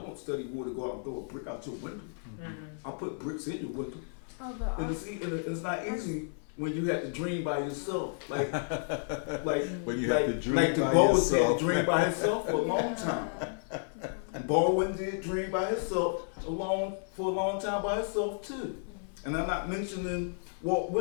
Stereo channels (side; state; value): right; silent; 56 dB below the other